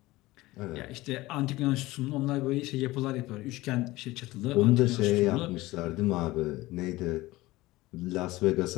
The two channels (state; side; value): quieter; right; 19.0 dB